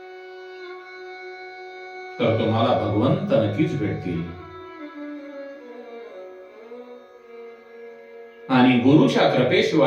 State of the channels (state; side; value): identical; both; correlation 1.00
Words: तर तुम्हाला भगवंत नक्कीच भेटतील. आणि गुरुच्या